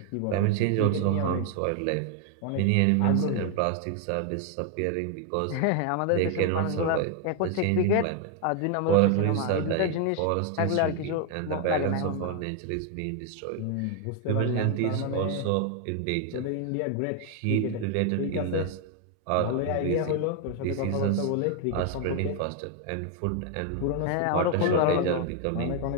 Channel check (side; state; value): both; different; correlation 0.01